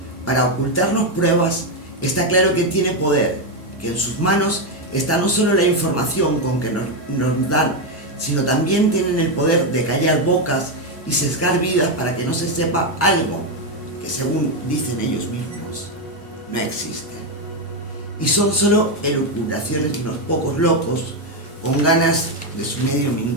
para ocultarnos pruebas, está claro que tiene poder, que en sus manos está no solo la información con que nos dan, sino también tienen el poder de callar bocas y sesgar vidas para que no se sepa algo que, según dicen ellos mismos, no existe. Y son solo elucubraciones de unos pocos locos con ganas de su medio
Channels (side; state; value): both; normal; correlation 0.05